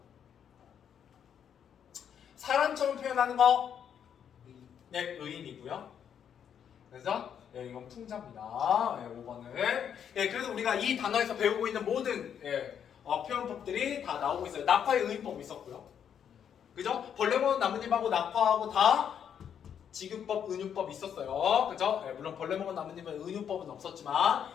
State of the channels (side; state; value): right; quieter; 8.4 dB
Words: 사람처럼 표현하는 거 의인이고요. 그래서 이건 풍자입니다. 5번은 그래서 우리가 이 단어에서 배우고 있는 모든 표현법들이 다 나오고 있어요. 낙화의 의인법 있었고요. 그죠? 벌레 먹은 나뭇잎하고 낙화하고 다 지구법, 은유법 있었어요. 그죠? 예, 물론 벌레 먹은 나뭇잎은 은유법은 없었지만